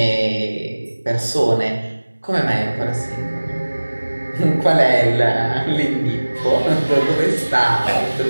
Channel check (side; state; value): both; inverted; correlation -1.00